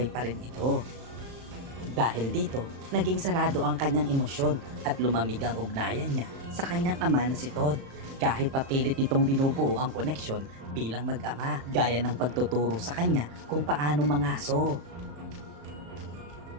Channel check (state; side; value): late; left; 35 ms